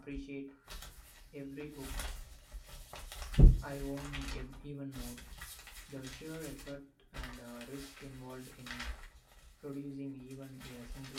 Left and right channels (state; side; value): identical; both; correlation 1.00